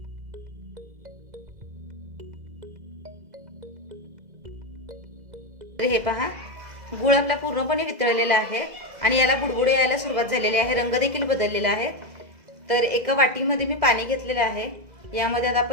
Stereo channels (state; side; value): late; left; 2.0 ms